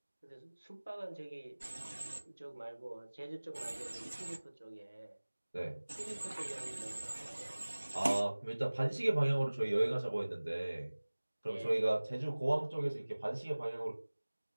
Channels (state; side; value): inverted; both; correlation -1.00